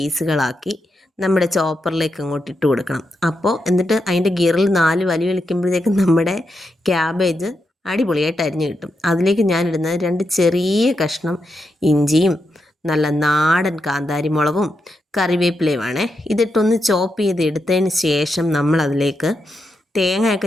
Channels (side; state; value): both; normal; correlation 0.85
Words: നമ്മുടെ ചോപ്പറിലേക്ക് അങ്ങോട്ട് ഇട്ട് കൊടുക്കണം. അപ്പോൾ എന്നിട്ട് അതിൻ്റെ ഗിയറിൽ 4 വലി വലിക്കുമ്പോഴത്തേക്കും നമ്മുടെ ക്യാബേജ് അടിപൊളിയായിട്ട് അരിഞ്ഞ് കിട്ടും. അതിലേക്ക് ഞാനിടുന്നത് 2 ചെറിയ കഷ്ണം ഇഞ്ചിയും നല്ല നാടൻ കാന്താരി മുളകും കറിവേപ്പിലയുമാണേ. ഇതിട്ടൊന്ന് ചോപ്പ് ചെയ്ത് എടുത്തതിന് ശേഷം നമ്മളതിലേക്ക്